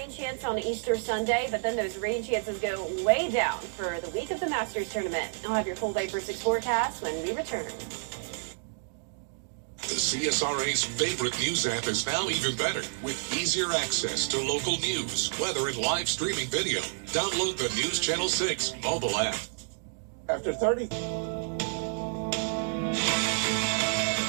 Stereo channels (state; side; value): silent; left; digital silence